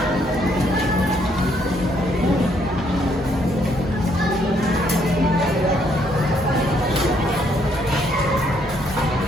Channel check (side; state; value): both; normal; correlation 0.70